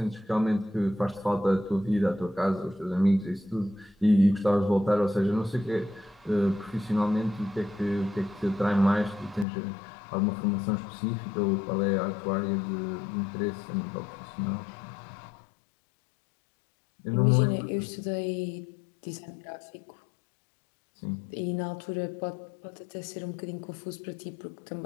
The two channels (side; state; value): right; drops out; at 9.5 s